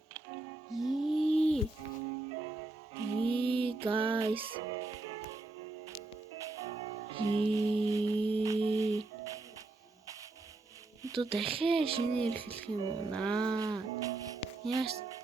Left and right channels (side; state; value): left; quieter; 3.1 dB